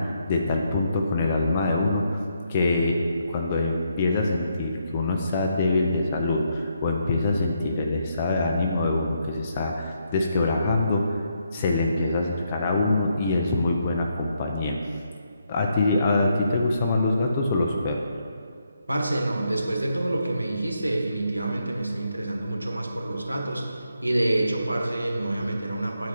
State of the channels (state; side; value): inverted; both; correlation -0.78